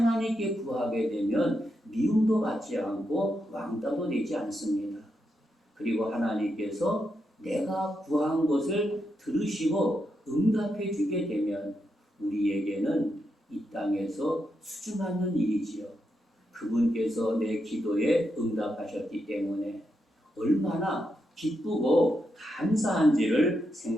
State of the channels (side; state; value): both; normal; correlation 0.83